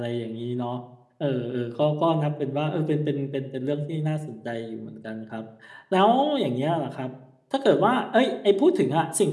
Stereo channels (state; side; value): identical; both; correlation 1.00